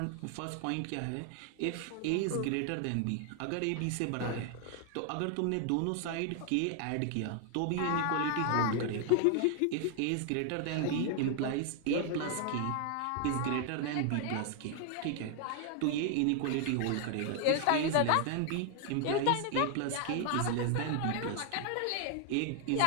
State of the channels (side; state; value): both; different; correlation 0.00